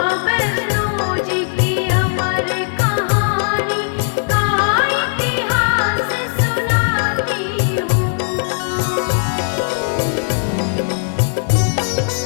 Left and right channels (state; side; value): silent; right; 68 dB below the other